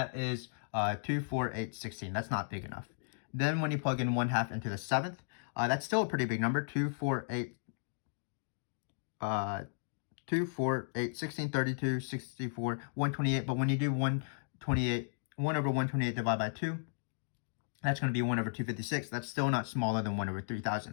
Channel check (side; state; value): right; silent; digital silence